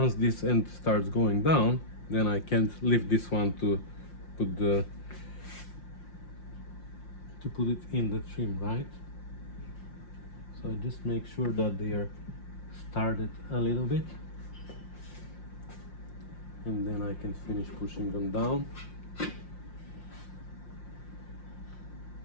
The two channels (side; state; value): right; late; 5.7 ms